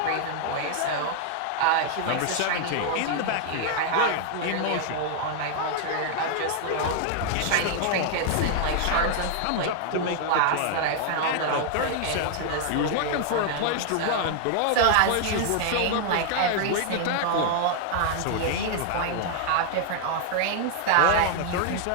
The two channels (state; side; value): different; both; correlation 0.00